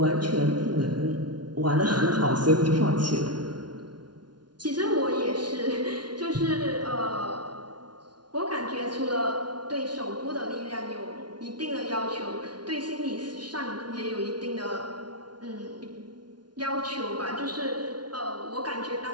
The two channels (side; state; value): left; late; 0.70 ms